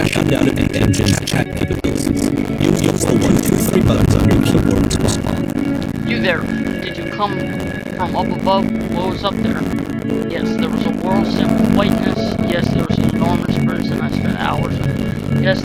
out of the engine's chat capabilities. Use the 1, 2, 3 buttons on your keyboard to respond. You there, did you come from up above? What was up there? Yes, there was a world set with whiteness. Yes, there was an enormous person I spent hours with. Yes,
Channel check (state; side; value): identical; both; correlation 1.00